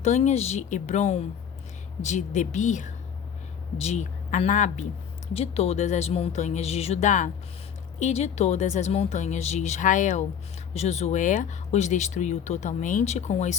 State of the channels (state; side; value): quieter; right; 8.1 dB